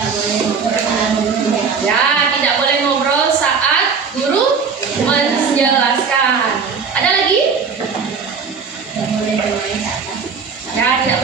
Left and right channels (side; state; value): left; quieter; 5.6 dB